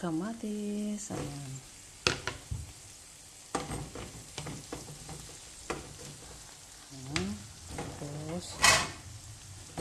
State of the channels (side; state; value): both; identical; correlation 1.00